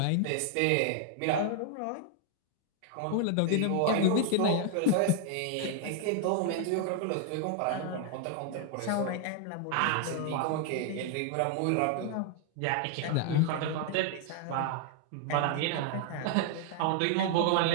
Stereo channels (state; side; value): different; both; correlation 0.00